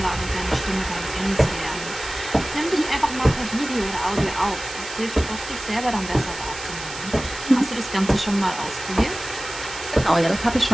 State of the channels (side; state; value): right; noise; hiss, 11 dB below the sound